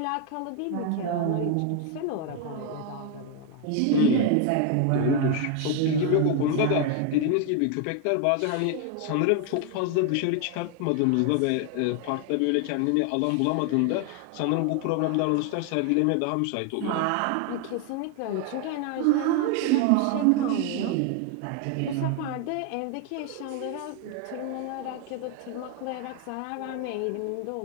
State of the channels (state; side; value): different; both; correlation 0.01